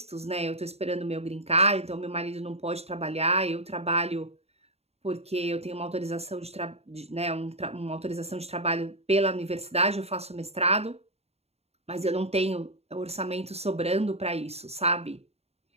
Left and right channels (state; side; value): late; left; 0.30 ms